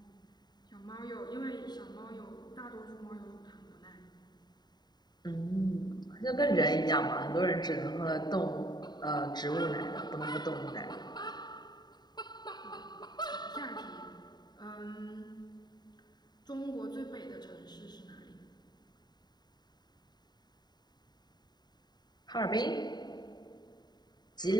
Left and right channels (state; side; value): late; right; 0.20 ms